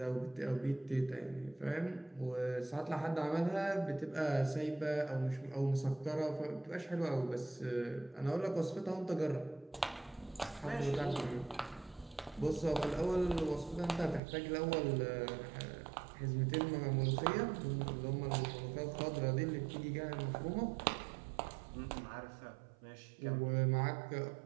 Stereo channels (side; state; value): left; drops out; at 14.2 s